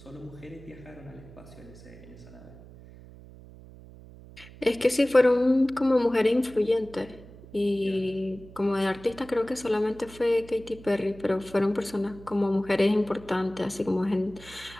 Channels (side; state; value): right; noise; hum, 19 dB below the sound